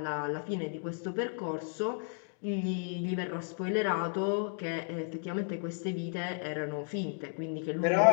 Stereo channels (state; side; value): silent; right; 56 dB below the other